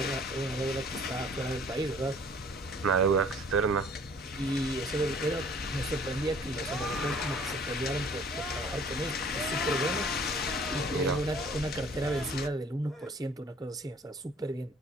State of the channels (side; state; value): both; normal; correlation 0.54